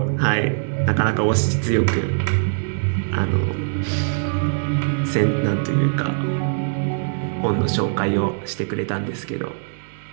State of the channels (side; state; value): left; silent; digital silence